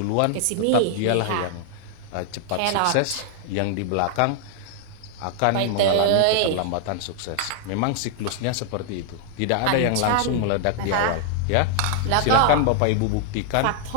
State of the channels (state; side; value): different; both; correlation 0.00